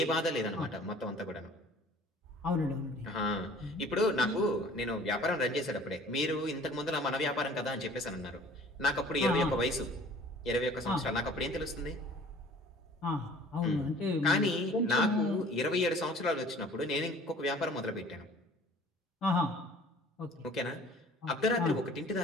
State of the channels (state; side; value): normal; both; correlation 0.50